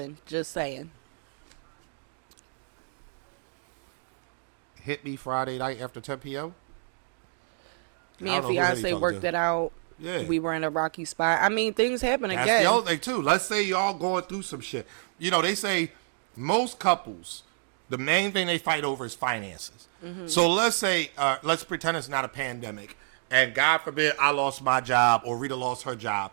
Just saying. Hit me Friday night after 10 p.m. Me and fiance worked it out. Yeah. We were in a rocky spot. I mean, things happen again. That's the other thing, too. Let's say y'all going through some shit. You know, they say most couples, the main thing they fight over is finances. Mm-hmm. So let's say, let's pretend it's not a pandemic. And God forbid I lost my job or Rita lost her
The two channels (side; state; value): left; silent; digital silence